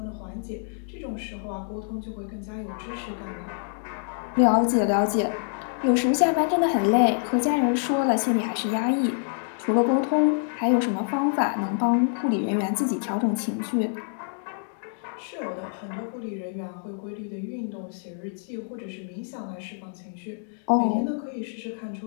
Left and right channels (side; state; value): right; silent; digital silence